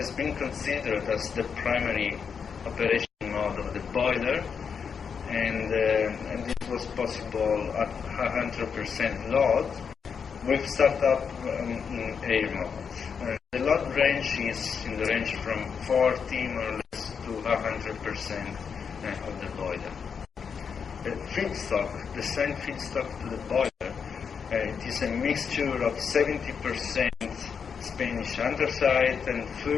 been considered as the primary operation mode of the boiler, and this was possible at 100% load with startup in air mode. The load range is in the range from 40 more or less to 100% of the boiler. The feedstock, the same feedstock to the boiler, it is a mixture of 70% Spanish anthracite and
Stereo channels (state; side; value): quieter; right; 6.4 dB